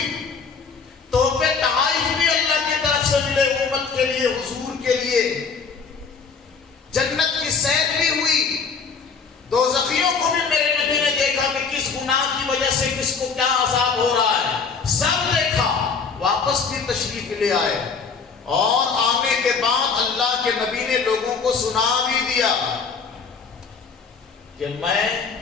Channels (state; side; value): quieter; right; 5.4 dB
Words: تحفے تحائف بھی اللہ کی طرف سے ملے امت کے لیے، حضور کے لیے، جنت کی سیر بھی ہوئی، دوزخیوں کو بھی میرے نبی نے دیکھا کہ کس گناہ کی وجہ سے کس کو کیا عذاب ہو رہا ہے، سب دیکھا، واپس بھی تشریف لے آئے، اور آنے کے بعد اللہ کے نبی نے لوگوں کو سنا بھی دیا کہ میں